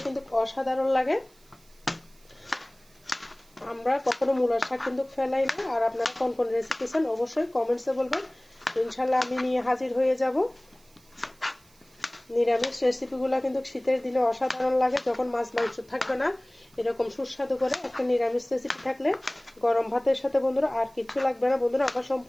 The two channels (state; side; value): noise; right; hiss, 29 dB below the sound